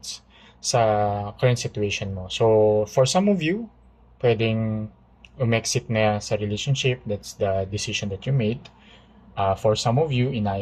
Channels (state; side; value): identical; both; correlation 1.00